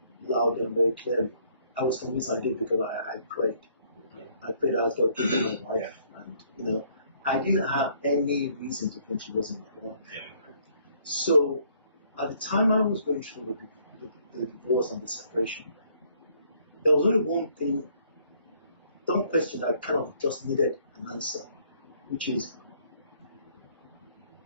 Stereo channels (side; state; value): both; inverted; correlation -0.65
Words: loud and very clearly. I was convinced I did because I prayed. I prayed as God gave me my wife. And, I didn't have any reason to think she wasn't my wife. So, at the time I was going through the divorce and the separation, there was only one question that kind of just needed an answer, which is,